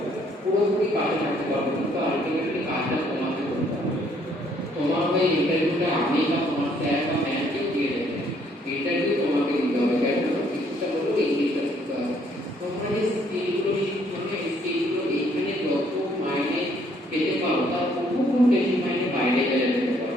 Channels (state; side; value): normal; both; correlation 0.66